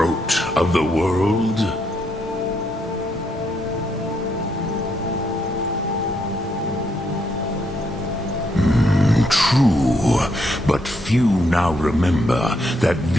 of the world? True, but few now remember that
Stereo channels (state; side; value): normal; both; correlation 0.76